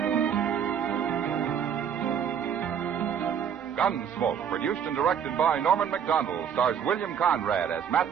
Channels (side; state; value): left; quieter; 8.1 dB